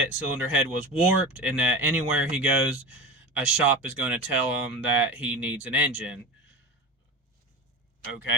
cylinder head was warped, and that anywhere he goes, a shop is going to tell him that he needs an engine.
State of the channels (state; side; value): normal; both; correlation 0.27